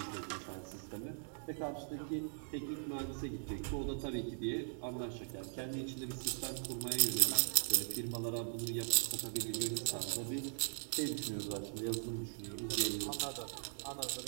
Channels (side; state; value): left; silent; digital silence